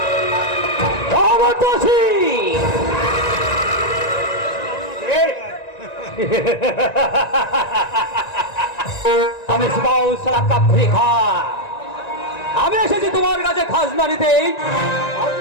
আমার চাষি আমি আমি এসেছি তোমার কাছে খাজনা নিতে।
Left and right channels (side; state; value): right; late; 1.9 ms